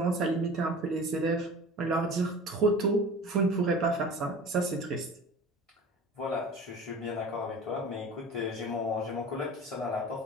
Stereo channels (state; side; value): normal; both; correlation 0.39